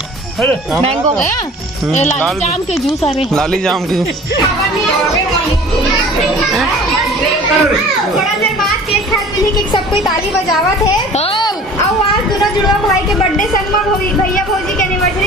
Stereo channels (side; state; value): both; normal; correlation 0.45